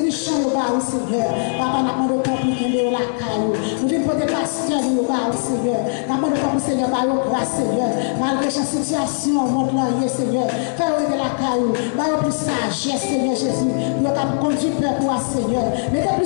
au bar, Seigneur. Papa, nous demandons pour qu'il y ait la caillou. Nous venons porter pasteur au bar, Seigneur. Nous demandons pour Seigneur, par la grâce, Seigneur. Malgré cette situation, montre l'enrier, Seigneur. Fais de la caillou. Par plus sagesse, Seigneur Jésus. Nous avons conduit peuple pour Seigneur. Mettez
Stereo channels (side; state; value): right; silent; 65 dB below the other